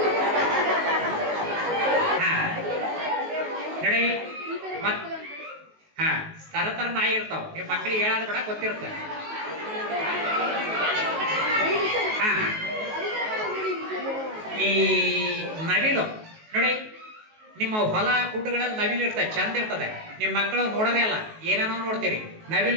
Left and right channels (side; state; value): left; late; 19 ms